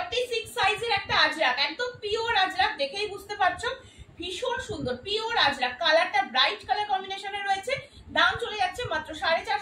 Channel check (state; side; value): identical; both; correlation 1.00